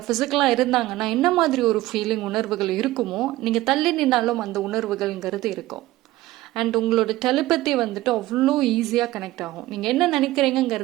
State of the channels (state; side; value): quieter; left; 16.9 dB